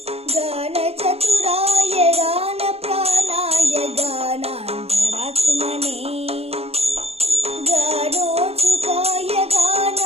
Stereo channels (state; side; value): late; left; 0.29 ms